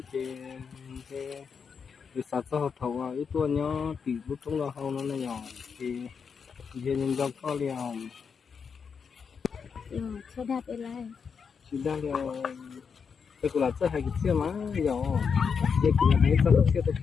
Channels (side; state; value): right; quieter; 6.2 dB